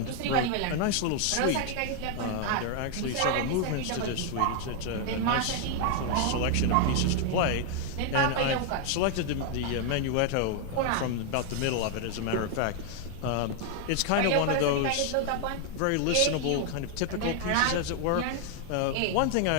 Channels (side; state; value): both; different; correlation 0.00